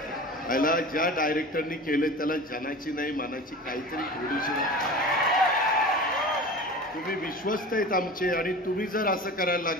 याला ज्या डायरेक्टरनी केलं त्याला जनाची नाही मानाची काहीतरी थोडीशी. तुम्ही विश्वस्त आहेत आमचे आणि तुम्ही जर असं करायला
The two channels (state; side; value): normal; both; correlation 0.35